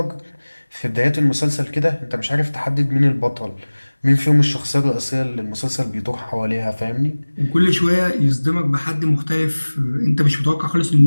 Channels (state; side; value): inverted; both; correlation -1.00